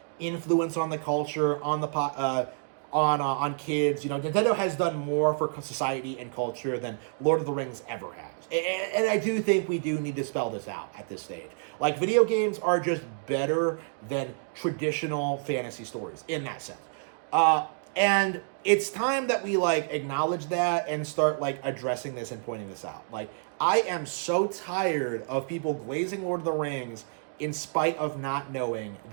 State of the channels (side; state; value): left; silent; digital silence